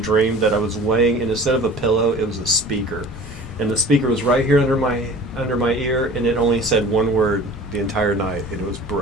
that I was laying, and instead of a pillow, it was a speaker. And the speaker was right here under my ear, and it only said one word the entire night, and it was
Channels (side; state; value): both; normal; correlation 0.43